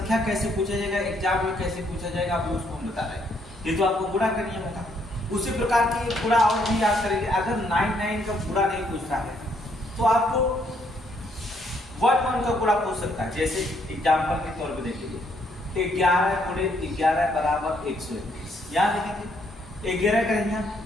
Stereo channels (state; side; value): normal; both; correlation 0.71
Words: कैसे पूछा जाएगा, एग्जाम में कैसे पूछा जाएगा, अभी उसको हम बता रहे हैं। ये तो आपको गुणा का नियम होगा। उसी प्रकार की गुणा और भी याद करेंगे। अगर 99 का गुणा नहीं पूछता है तो आपको 1 का गुणा पूछ सकता है। जैसे एग्जाम्पल के तौर पर देखिए 11 गुणे 11 बराबर 121, यहाँ देखेंगे 11 करेंगे